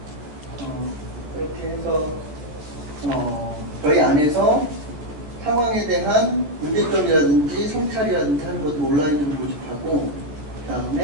그렇게 해서 저희 안에서 상황에 대한 문제점이라든지 성찰이라든지 하는 것을 온라인으로 모집하고 그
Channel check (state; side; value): late; left; 13 ms